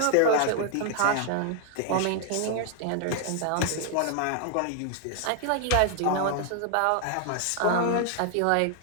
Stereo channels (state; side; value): different; both; correlation 0.00